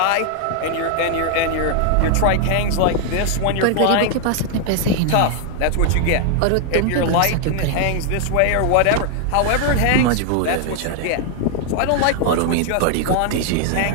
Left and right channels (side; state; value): both; different; correlation 0.00